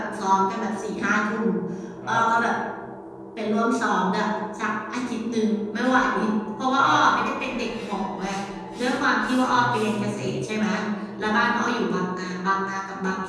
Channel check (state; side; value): identical; both; correlation 1.00